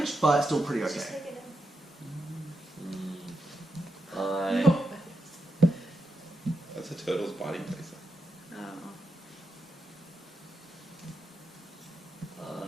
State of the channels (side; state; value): both; normal; correlation 0.85